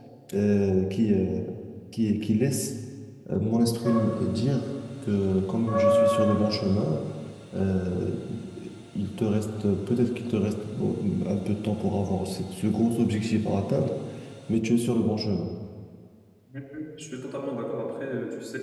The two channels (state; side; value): identical; both; correlation 1.00